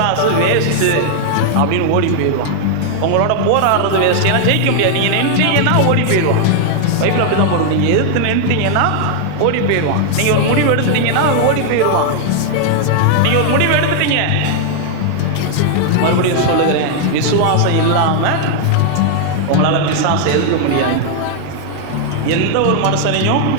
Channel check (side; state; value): both; different; correlation 0.00